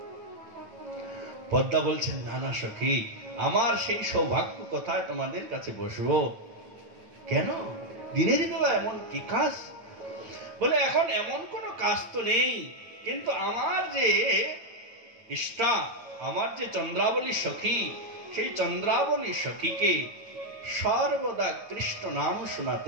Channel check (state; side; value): late; left; 9.2 ms